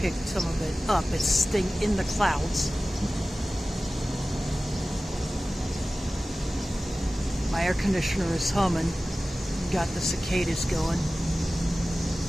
some of it up. It's staying in the clouds. My air conditioner is humming. Got the cicadas going.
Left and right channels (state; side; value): normal; both; correlation 0.96